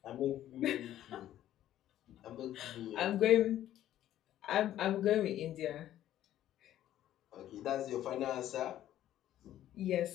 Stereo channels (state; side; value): quieter; right; 12.5 dB